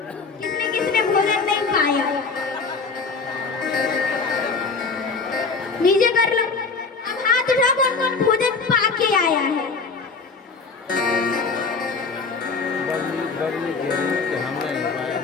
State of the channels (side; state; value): right; quieter; 4.5 dB